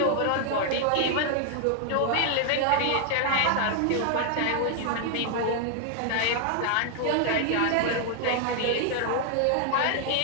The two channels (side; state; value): both; different; correlation 0.00